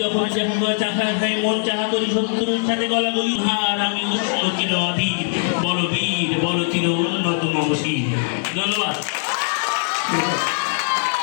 যখন চাখা খাই মন চাহা করি শত্রুর সাথে গলা বলি হার, আমি উষ্ণ চির অধীর, বড় বীর, বড় চির উন্নত মমশীর। ধন্যবাদ।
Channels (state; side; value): silent; right; digital silence